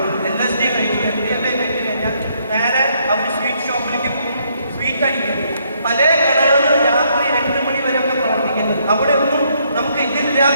LSD കഴിക്കും, MDMA കഴിച്ചു കഴിഞ്ഞാൽ നേരെ അവർ സ്വീറ്റ് ഷോപ്പിലേക്ക് പോകും, സ്വീറ്റ് അടിക്കും. പല കടകളും രാത്രി 2 മണി വരെ ഒക്കെ പ്രവർത്തിക്കുന്നത്. അവിടെ ഒന്നും നമുക്ക്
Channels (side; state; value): both; inverted; correlation -0.71